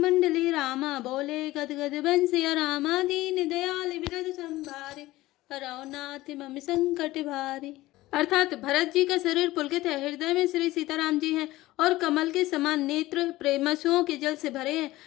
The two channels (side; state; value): right; quieter; 17.7 dB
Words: रामा, बोले गद गद बन सिया रामा, दीन दयाल विरद संभारे, हरौ नाथ मम संकट भारी। अर्थात भरत जी का शरीर पुलकित है, हृदय में श्री सीताराम जी हैं और कमल के समान नेत्र प्रेमसुओं के जल से भरे हैं।